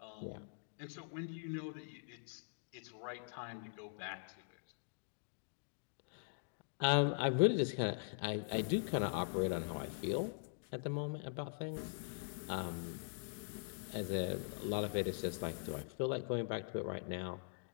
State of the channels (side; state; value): right; silent; digital silence